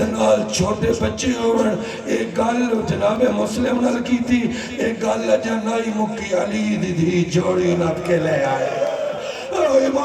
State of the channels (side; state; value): both; identical; correlation 1.00